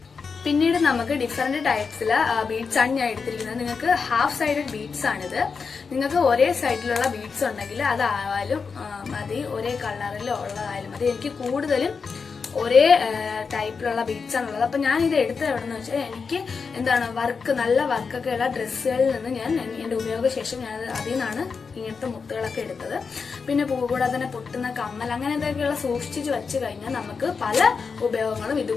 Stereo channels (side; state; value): right; quieter; 5.3 dB